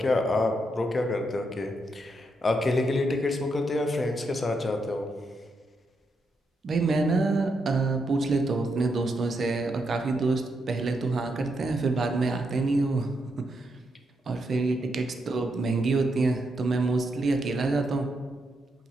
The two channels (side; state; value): both; normal; correlation 0.81